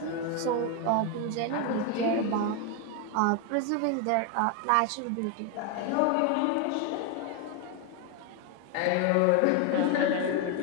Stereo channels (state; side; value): different; both; correlation 0.01